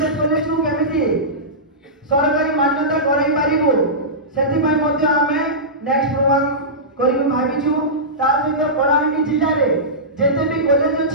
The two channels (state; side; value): normal; both; correlation -0.17